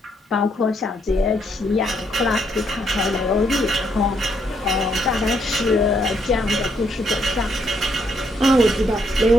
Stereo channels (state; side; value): normal; both; correlation 0.74